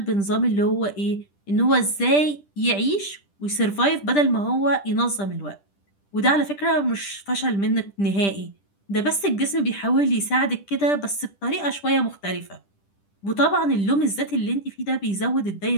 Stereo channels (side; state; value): right; late; 10 ms